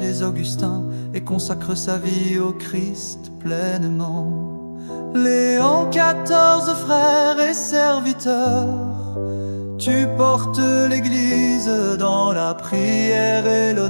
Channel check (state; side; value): inverted; both; correlation -1.00